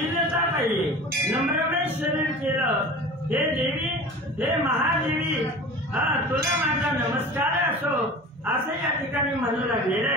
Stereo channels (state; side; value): normal; both; correlation 0.37